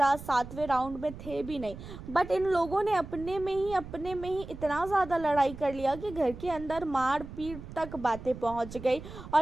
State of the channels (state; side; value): noise; right; rumble, 13 dB below the sound